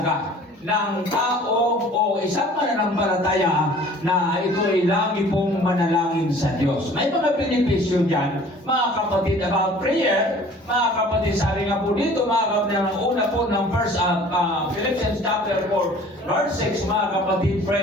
ng tao o isang mananampalataya na ito ay lagi pong manalangin sa Diyos. May mga benepisyo dyan, mga kapatid, about prayer. Mga kapatid, sabi nga po dito, mga kapatid, ang una po ng Philippians chapter 4, verse 6, mga kapatid,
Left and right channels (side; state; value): both; normal; correlation 0.49